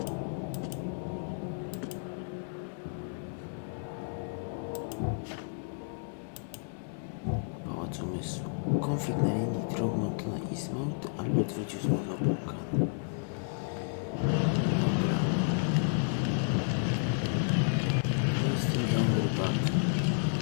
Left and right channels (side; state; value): right; silent; digital silence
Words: Pałac Umysłu. Konflikt na linii Throgmorton-Eastmount. Albert wrócił z obłąkany. Dobra. To jest ten dom rybaka.